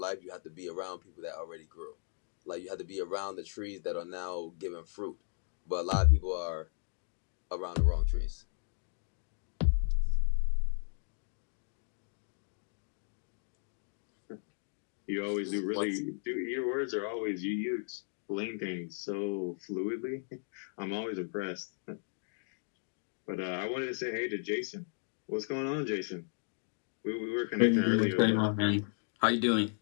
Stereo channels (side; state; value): right; silent; digital silence